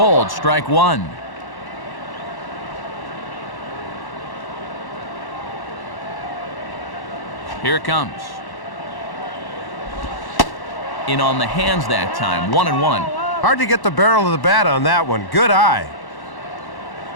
strike one. Here it comes. In on the hands that time, 1-1. Hard to get the barrel of the bat on that one. Good eye.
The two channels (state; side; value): late; right; 1.1 ms